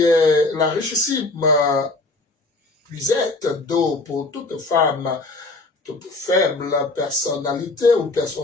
est la richissime puisette d'eau pour toute femme, toute faible personnalité ou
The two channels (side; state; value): right; quieter; 3.2 dB